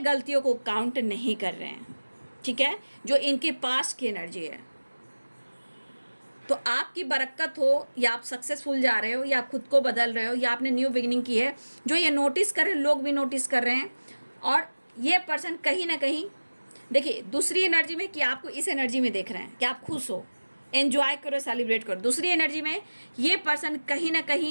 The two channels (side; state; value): both; inverted; correlation -1.00